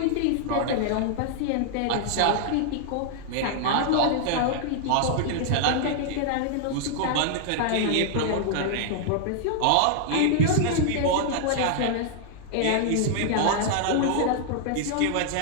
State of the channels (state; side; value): different; both; correlation -0.01